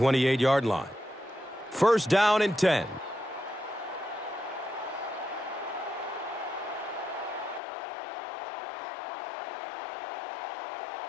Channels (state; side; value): drops out; right; at 7.6 s